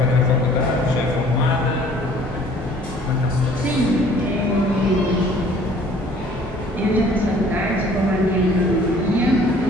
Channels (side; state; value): both; normal; correlation 0.54